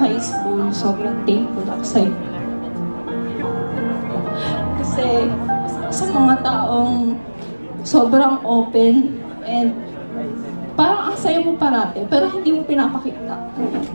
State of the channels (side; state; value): both; inverted; correlation -1.00